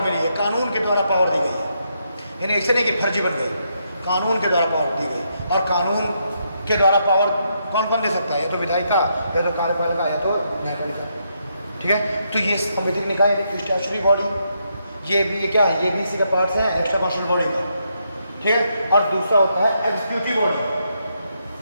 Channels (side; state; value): both; inverted; correlation -0.79